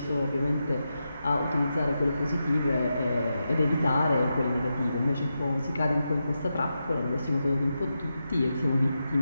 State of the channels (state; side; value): inverted; both; correlation -0.88